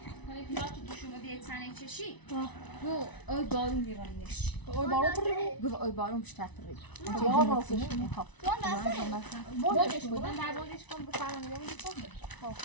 hani pilav tutuşumu diye tane çeşi. Bu oy balım divanmış. oy baro پره Bu oy balım müşterperi. Ya راستش Ha. بودش کن Ben der bolış kon bu falan dedim kon.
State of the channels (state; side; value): late; right; 1.0 ms